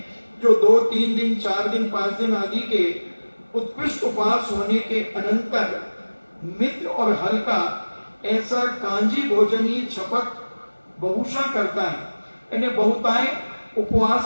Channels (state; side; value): inverted; both; correlation -1.00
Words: जो 2, 3 दिन, 4 दिन, 5 दिन आदि के उत्कृष्ट उपवास होने के अनंतर मित्र और हल्का ऐसा कांजी भोजन ही छपक बहुशा करता है। यानी बहुताय